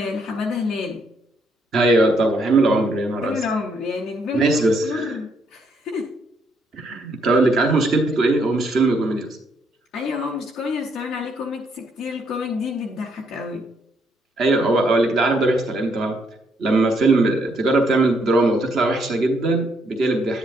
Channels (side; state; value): both; normal; correlation 0.72